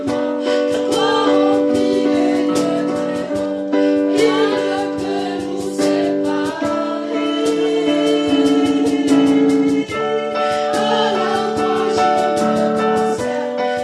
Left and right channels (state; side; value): identical; both; correlation 1.00